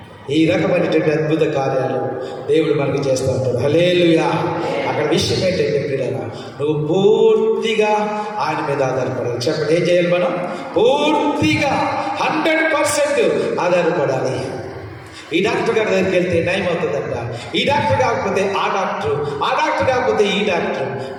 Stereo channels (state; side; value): identical; both; correlation 1.00